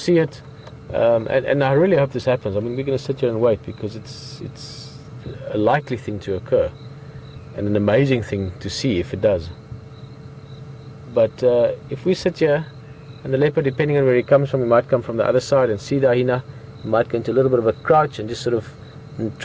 it, and I really hope this happens. I mean, we're going to sit here and wait because it's a likely thing to occur and an amazing thing to see if it does. But if we sit here and the leopard, depending on where he comes from, he might come from the other side and see the hyena. He might go into a little bit of a crouch and just sort of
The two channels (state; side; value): identical; both; correlation 1.00